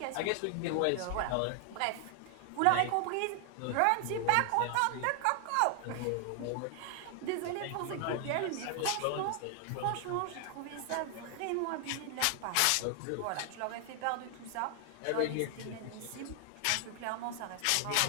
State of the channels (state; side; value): different; both; correlation 0.00